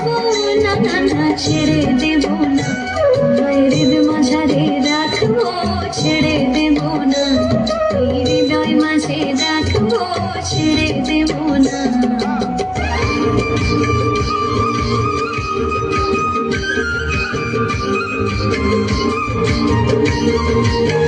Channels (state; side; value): identical; both; correlation 1.00